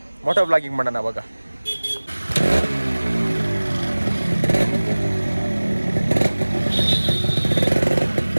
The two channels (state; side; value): inverted; both; correlation -1.00